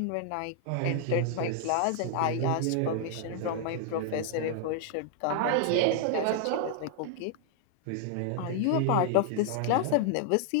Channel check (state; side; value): different; both; correlation 0.00